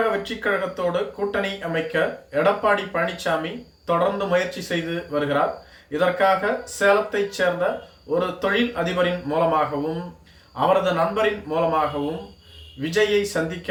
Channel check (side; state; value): both; identical; correlation 1.00